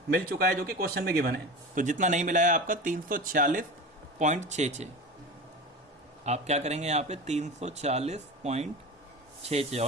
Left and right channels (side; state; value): both; normal; correlation 0.30